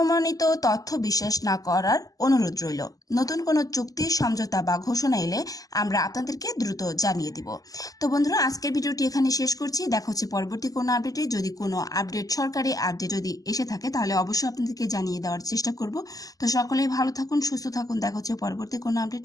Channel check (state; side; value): late; right; 0.17 ms